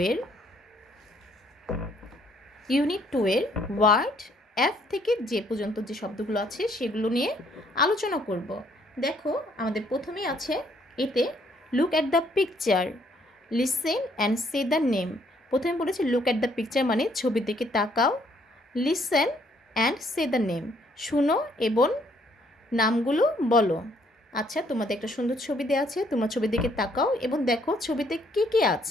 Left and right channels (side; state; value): both; normal; correlation 0.67